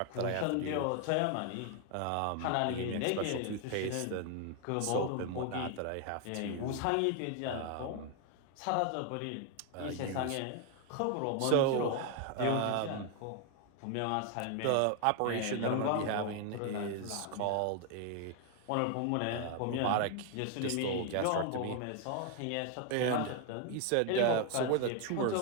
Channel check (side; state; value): both; different; correlation 0.00